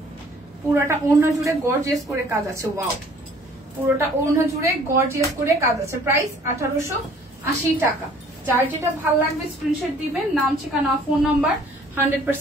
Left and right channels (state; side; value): normal; both; correlation 0.55